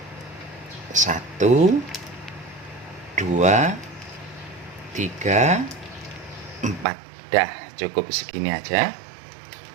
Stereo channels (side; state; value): left; drops out; at 6.9 s